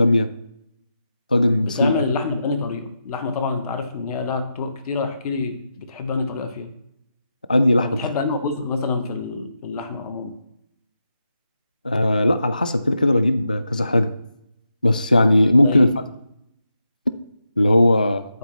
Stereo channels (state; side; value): inverted; both; correlation -0.87